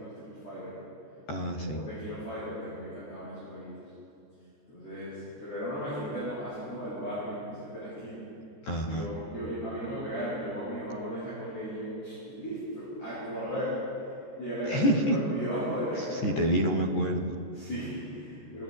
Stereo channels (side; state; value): right; late; 14 ms